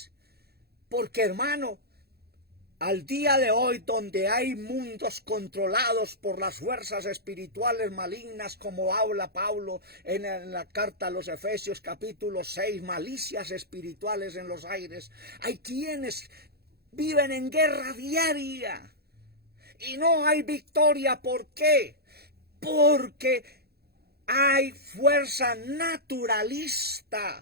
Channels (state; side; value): late; left; 0.46 ms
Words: Porque, hermano, al día de hoy, donde hay mundos controlados por las fuerzas espirituales malignas, como habla Pablo en la carta a los Efesios capítulo 6, malicias espirituales en los aires, hay quienes viven en guerra diaria y no hay victoria. ¿Por qué? Porque hay fuerza